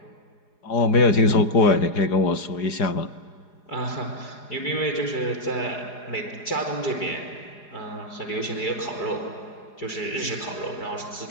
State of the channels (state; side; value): late; right; 4.9 ms